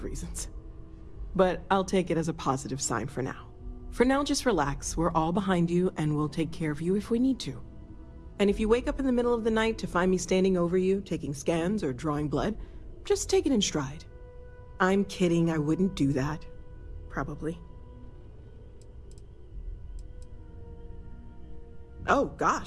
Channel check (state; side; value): identical; both; correlation 1.00